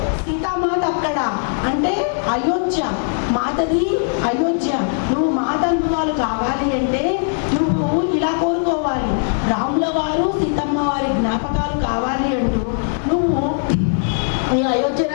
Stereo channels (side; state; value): right; silent; 65 dB below the other